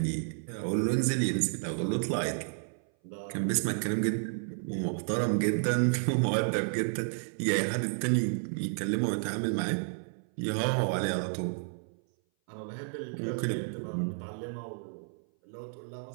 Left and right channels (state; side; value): silent; left; 57 dB below the other